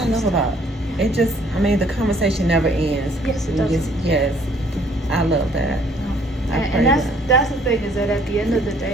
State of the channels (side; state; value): both; normal; correlation 0.61